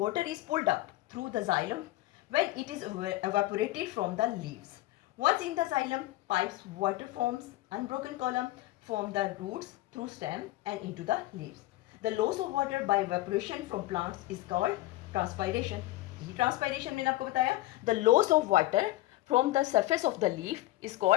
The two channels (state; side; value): quieter; right; 17.2 dB